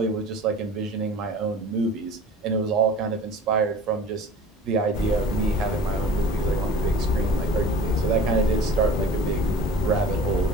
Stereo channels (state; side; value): normal; both; correlation 0.42